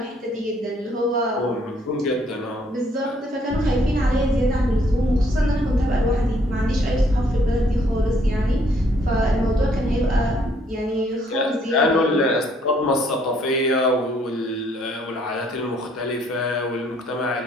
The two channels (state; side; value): normal; both; correlation 0.66